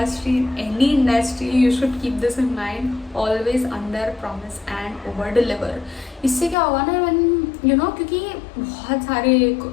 in any industry. You should keep this in mind, always under promise and over deliver. इससे क्या होगा ना, when क्योंकि बहुत सारे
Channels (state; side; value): drops out; right; at 6.6 s